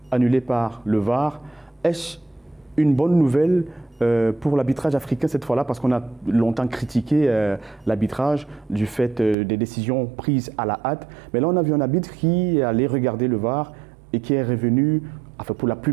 annulés par le VAR. Est-ce une bonne nouvelle pour l'arbitrage africain cette fois-là, parce qu'on a longtemps critiqué l'arbitrage du fait des décisions prises à la hâte. Mais là, on a vu un arbitre qui allait regarder le VAR et qui est revenu, enfin pour la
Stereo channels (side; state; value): left; drops out; at 9.3 s